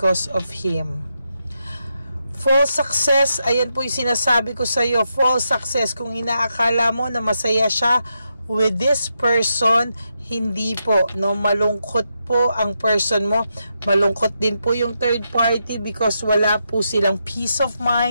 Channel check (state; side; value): inverted; both; correlation -0.84